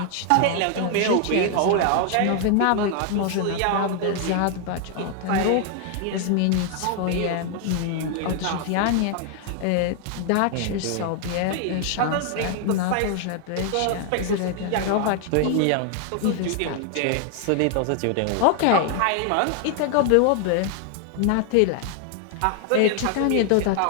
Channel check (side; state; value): both; different; correlation 0.00